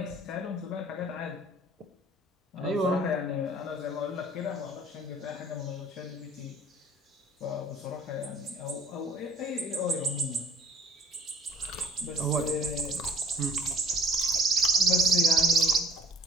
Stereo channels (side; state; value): both; normal; correlation 0.51